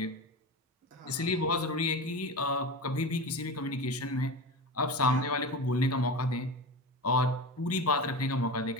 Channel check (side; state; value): both; normal; correlation 0.26